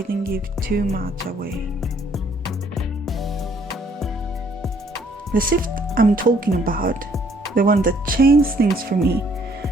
give too much away. The shift I'm talking about, the one that changed things for me,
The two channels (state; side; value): normal; both; correlation 0.64